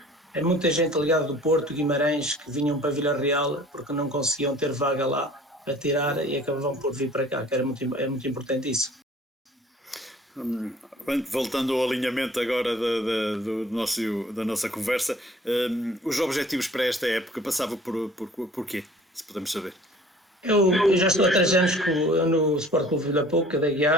é muita gente ligada do Porto, Guimarães, que vinham para Vila Real porque não conseguiam ter vaga lá para tirar e acabavam por vir para cá, que é muito importante isso. Voltando ao alinhamento agora da nossa conversa, os objetivos para esta época passavam por quê, se podemos saber? Eu já estou há 3 anos no Sport Clube Vila Pouca da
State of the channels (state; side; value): normal; both; correlation 0.50